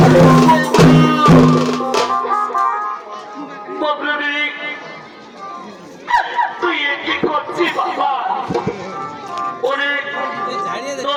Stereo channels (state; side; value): identical; both; correlation 1.00